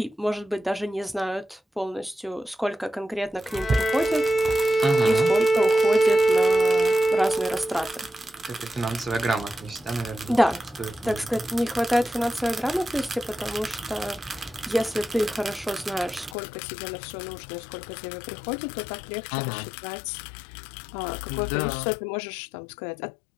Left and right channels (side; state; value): right; drops out; at 16.4 s